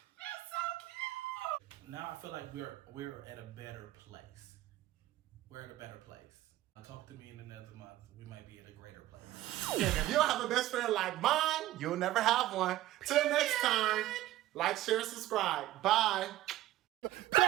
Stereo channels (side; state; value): left; quieter; 14.9 dB